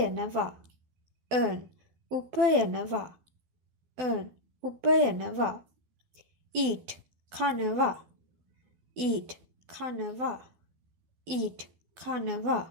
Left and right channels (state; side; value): late; left; 12 ms